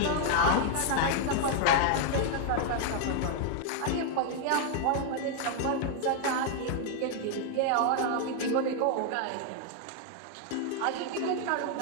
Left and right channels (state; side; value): different; both; correlation 0.00